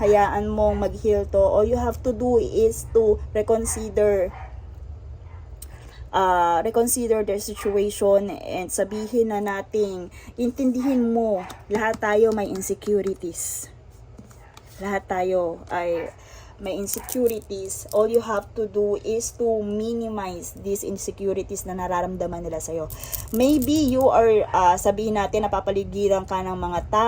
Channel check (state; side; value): identical; both; correlation 1.00